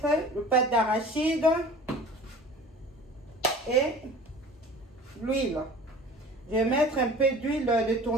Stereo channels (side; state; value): both; normal; correlation 0.43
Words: le pâte d'arachide et l'huile. Je vais mettre un peu d'huile de